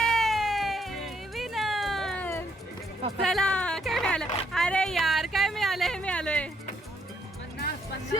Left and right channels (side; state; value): both; normal; correlation 0.72